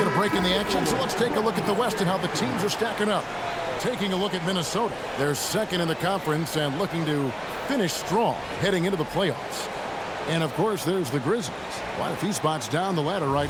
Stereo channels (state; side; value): identical; both; correlation 1.00